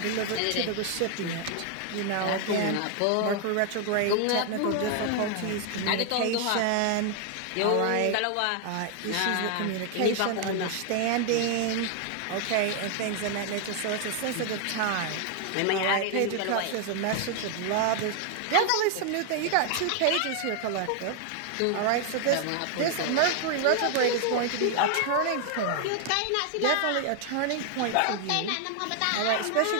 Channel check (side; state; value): both; different; correlation 0.00